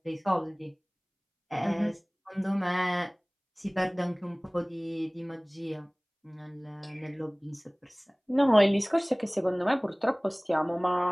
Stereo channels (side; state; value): both; identical; correlation 1.00